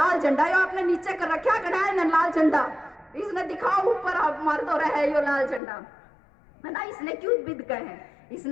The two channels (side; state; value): right; drops out; at 5.6 s